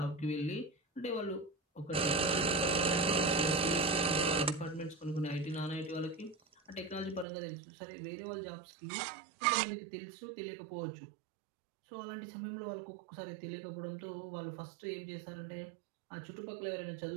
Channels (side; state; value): left; drops out; at 7.2 s